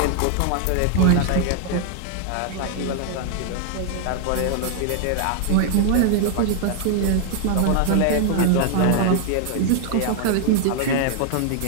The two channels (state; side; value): different; both; correlation 0.00